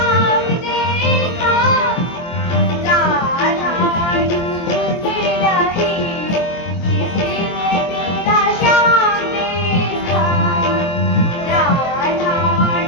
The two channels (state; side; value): late; right; 23 ms